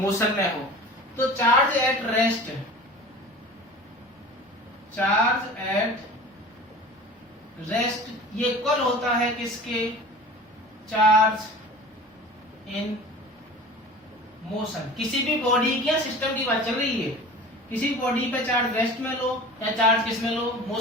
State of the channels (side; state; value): both; normal; correlation 0.39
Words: में हो। तो charge at rest, charge at rest ये इक्वल होता है किसके, चार्ज इन मोशन। किसी भी बॉडी की या सिस्टम की बात चल रही है, किसी बॉडी पे चार्ज रेस्ट में लो या चार्ज किस में लो,